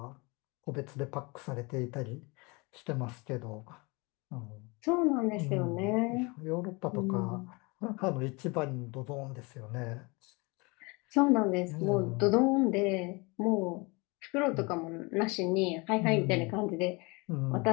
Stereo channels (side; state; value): right; quieter; 27.5 dB